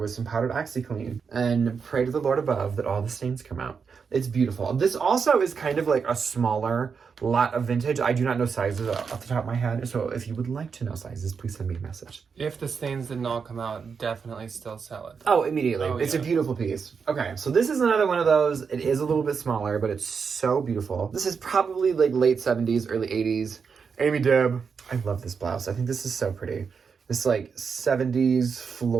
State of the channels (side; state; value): left; quieter; 5.9 dB